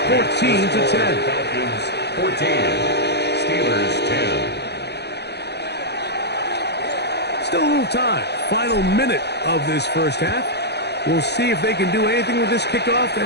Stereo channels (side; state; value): right; late; 0.48 ms